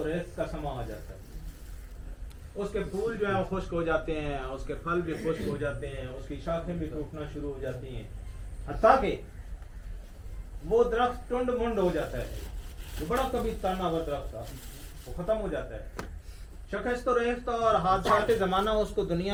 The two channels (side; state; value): both; identical; correlation 1.00